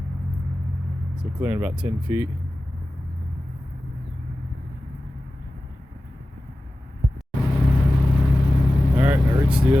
so clearing about 10 feet. Alright, I reached the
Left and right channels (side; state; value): both; normal; correlation 0.95